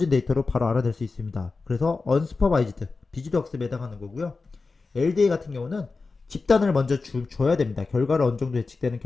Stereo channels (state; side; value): quieter; right; 4.1 dB